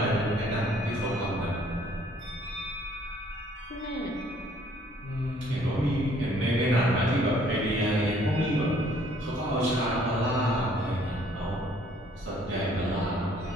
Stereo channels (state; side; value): normal; both; correlation 0.60